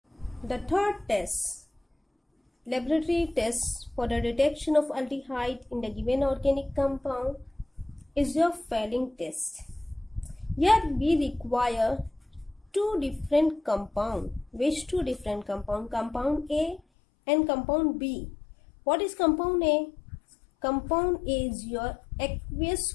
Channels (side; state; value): right; drops out; at 16.8 s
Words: The third test, laboratory test for the detection of aldehyde in the given organic compound, is your Fehling test. Here we require two different compounds. Which two different compounds? Compound A and compound B. What is compound A? Compound A is your